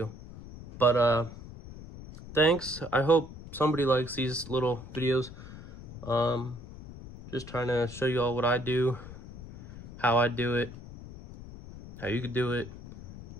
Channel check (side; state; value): left; noise; rumble, 14 dB below the sound